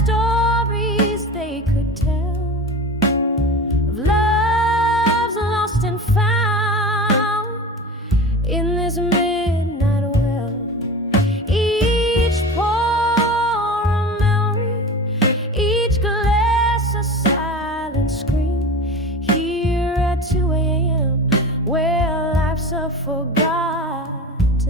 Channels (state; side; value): normal; both; correlation 0.32